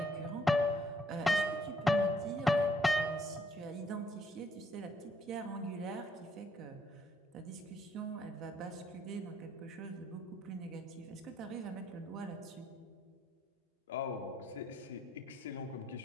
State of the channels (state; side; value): normal; both; correlation 0.69